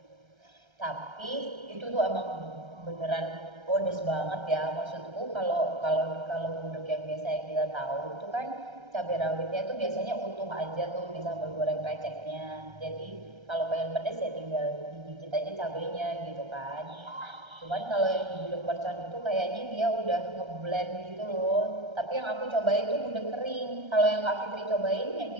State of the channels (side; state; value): left; late; 1.3 ms